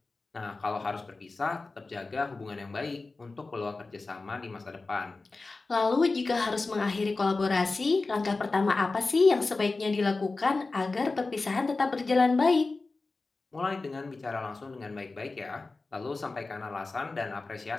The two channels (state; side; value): quieter; right; 3.6 dB